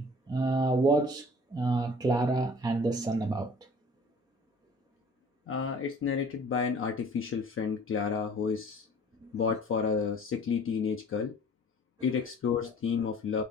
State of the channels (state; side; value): normal; both; correlation 0.49